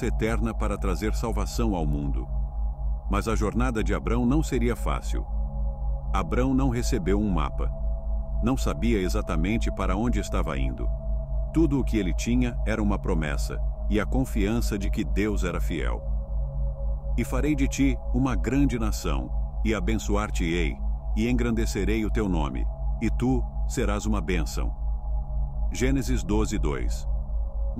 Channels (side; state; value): both; identical; correlation 1.00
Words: eterna para trazer salvação ao mundo. Mas a jornada de Abrão não seria fácil. Abrão não recebeu um mapa. Não sabia exatamente para onde estava indo. Tudo o que ele tinha era uma promessa e a confiança de que Deus era fiel. E farei de ti uma grande nação, e abençoar-te-ei, e engrandecerei o teu nome, e tu serás uma bênção. Gênesis 12:2.